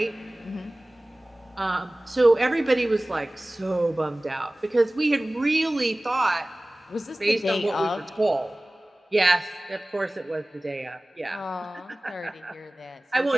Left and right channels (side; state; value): both; normal; correlation 0.98